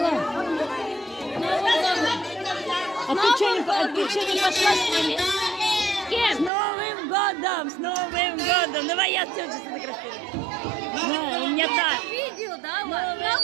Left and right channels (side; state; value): left; drops out; at 6.5 s